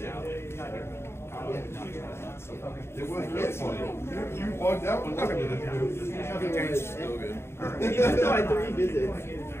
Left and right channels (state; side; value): late; right; 0.12 ms